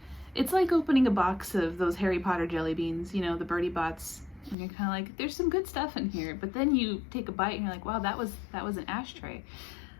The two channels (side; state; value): right; drops out; at 4.5 s